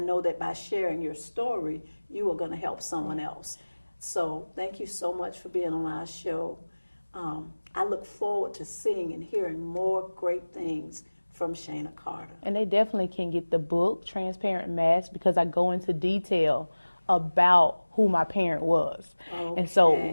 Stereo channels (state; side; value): inverted; both; correlation -1.00